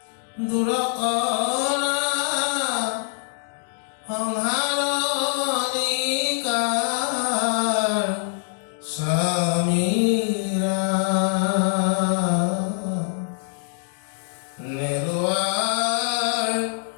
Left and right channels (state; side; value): silent; right; 62 dB below the other